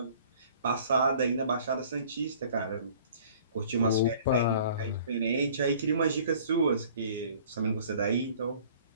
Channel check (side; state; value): both; inverted; correlation -0.52